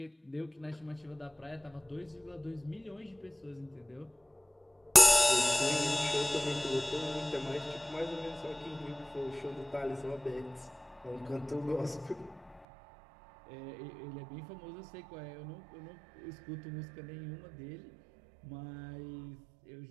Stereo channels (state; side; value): drops out; left; at 12.7 s